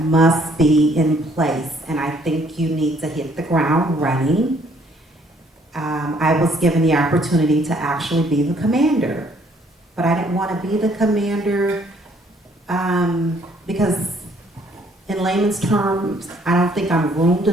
be in place, and I think you need to hit the ground running. I was given the opportunity to actually be the commander, but I didn't want to be the commander because in layman's terms, I don't think I'm groomed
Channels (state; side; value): normal; both; correlation 0.64